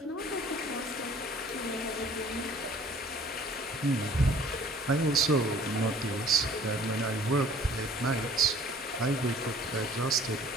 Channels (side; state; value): both; normal; correlation 0.53